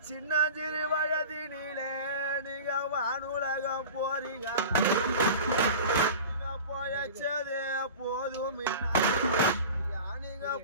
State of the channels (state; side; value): inverted; both; correlation -0.35